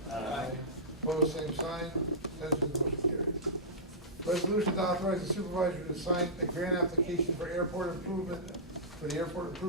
Aye. Opposed, same sign. Abstentions, motion carries. Resolution to authorize the supervisor to sign a grant application for airport improvement, for the airport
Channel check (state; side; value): normal; both; correlation -0.16